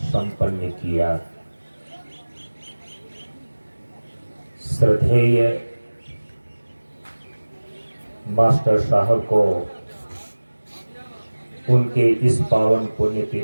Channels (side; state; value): both; inverted; correlation -1.00